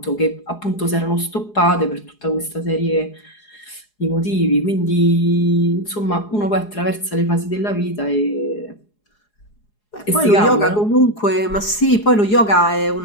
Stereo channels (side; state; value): right; late; 4.8 ms